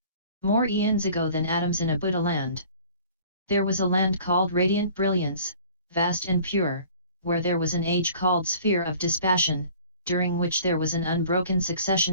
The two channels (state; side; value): inverted; both; correlation -0.49